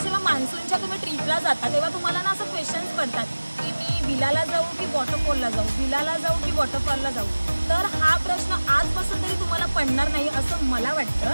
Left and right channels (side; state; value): both; inverted; correlation -1.00